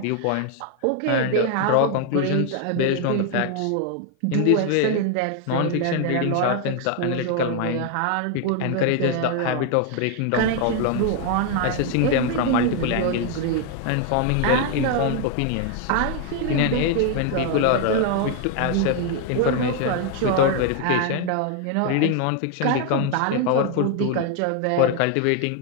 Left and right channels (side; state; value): both; different; correlation 0.01